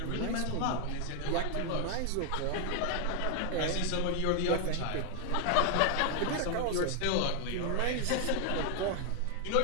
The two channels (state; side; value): different; both; correlation 0.00